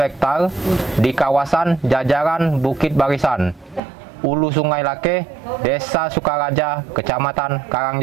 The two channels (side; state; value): left; drops out; at 3.8 s